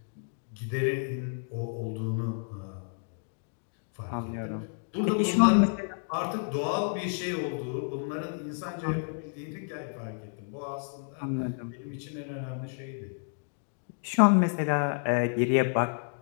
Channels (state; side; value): silent; right; 58 dB below the other